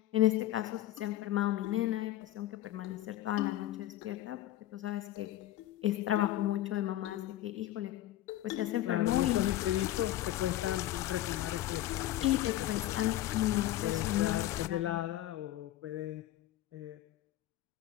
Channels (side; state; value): right; quieter; 14.1 dB